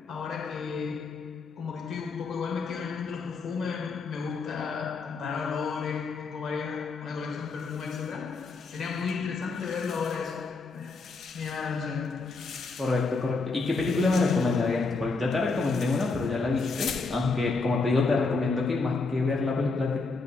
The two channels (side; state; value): right; quieter; 4.0 dB